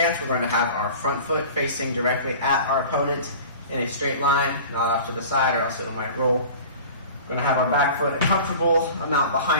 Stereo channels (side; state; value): both; inverted; correlation -0.40